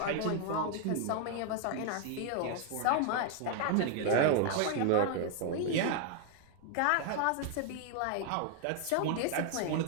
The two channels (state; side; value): different; both; correlation 0.00